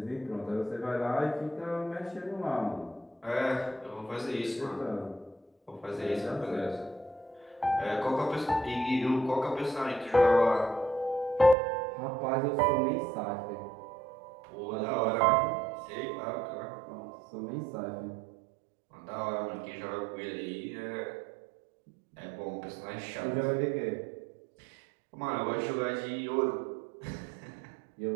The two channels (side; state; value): left; drops out; at 11.6 s